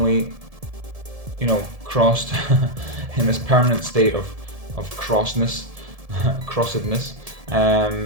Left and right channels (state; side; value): late; left; 1.7 ms